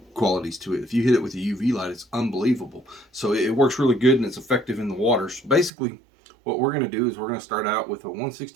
qualities to it. If you hit it with a UV light, it's unbelievable. So it works really good and it's effective in the water. So basically what we're going to do is we're going to start out with a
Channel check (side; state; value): left; drops out; at 5.7 s